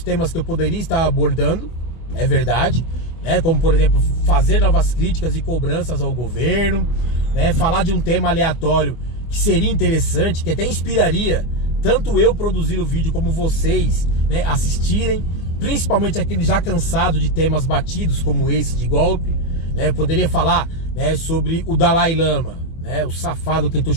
que eu poderia estar abordando, é verdade, como por exemplo, fazer novas críticas e cobranças ao governo, falar de um tema aleatório que seria interessante, que até inspiraria tanto eu produzir o vídeo como vocês assistirem, principalmente aqueles já cansados de temas batidos como esse de golpe. Poderia falar sobre o Dalai Lama, o safado que tentou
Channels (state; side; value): late; right; 24 ms